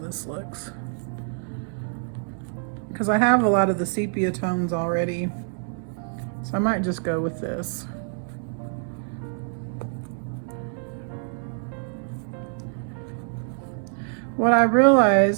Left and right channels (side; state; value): left; silent; 61 dB below the other